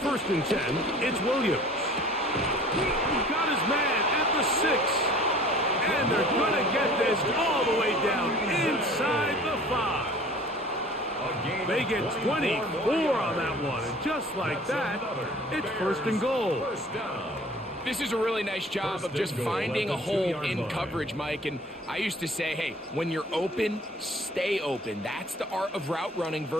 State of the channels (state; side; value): normal; both; correlation 0.48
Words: and 10, it's Williams. Got his man at the 6. And they're going to get this all the way down inside the 5. They get 24 on that one, and just like that, it's 1st and goal. This is a really nice job of just finding a hole in coverage, Mike. And I used to say, hey, when you're open, stay open. That's the art of route running